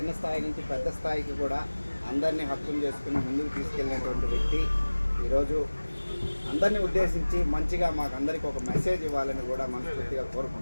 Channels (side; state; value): both; inverted; correlation -1.00